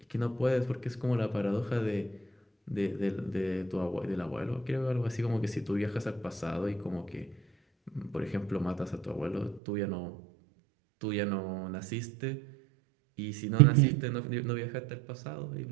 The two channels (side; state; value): left; drops out; at 9.6 s